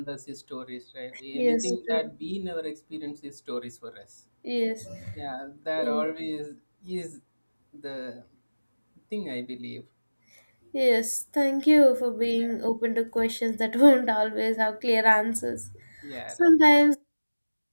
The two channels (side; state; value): both; inverted; correlation -1.00